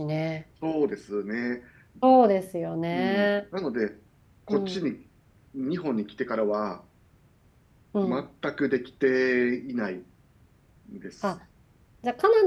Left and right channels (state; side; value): identical; both; correlation 1.00